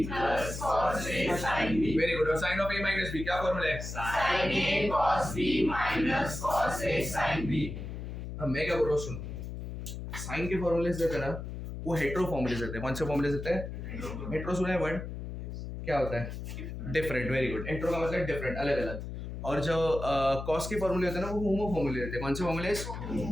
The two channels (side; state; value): left; noise; hum, 7 dB below the sound